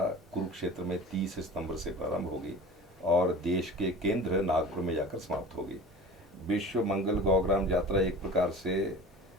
कुरुक्षेत्र में 30 सितंबर से प्रारंभ होगी और देश के केंद्र नागपुर में जाकर समाप्त होगी। विश्व मंगल गौग्राम यात्रा एक प्रकार से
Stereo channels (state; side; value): normal; both; correlation 0.38